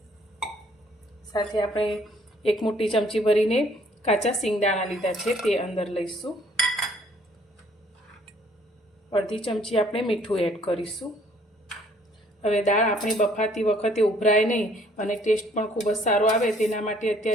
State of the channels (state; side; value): normal; both; correlation 0.61